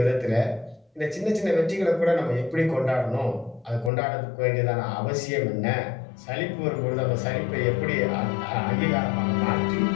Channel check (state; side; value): drops out; right; at 3.9 s